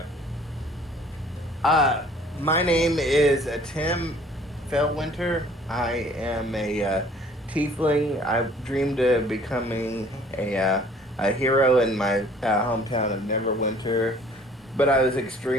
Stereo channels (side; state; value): both; normal; correlation 0.54